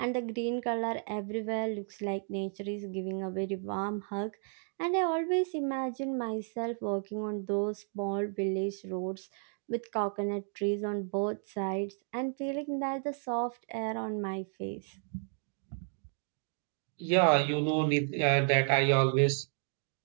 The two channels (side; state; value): left; silent; 56 dB below the other